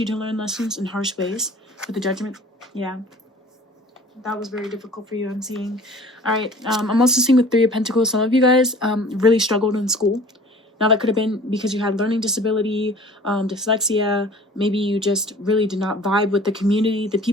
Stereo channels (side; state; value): both; normal; correlation 0.47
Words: to learn lessons in harsh ways with the Judgment. Yeah. That was very difficult for you, I'm seeing. All right. I'm also seeing with 3 of Pentacles, some of you guys really struggled in school. Now, that could have been because you had learning disability, dyslexia. Maybe you just really did not vibe with the community, the